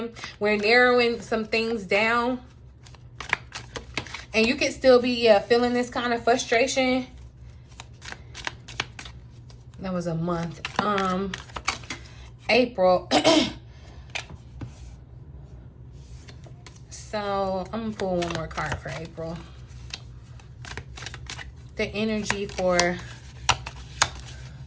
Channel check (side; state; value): both; identical; correlation 1.00